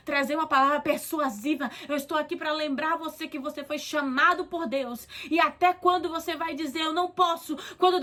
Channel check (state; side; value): identical; both; correlation 1.00